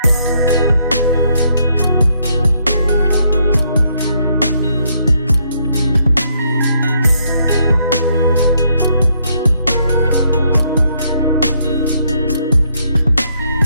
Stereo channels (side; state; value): both; inverted; correlation -0.72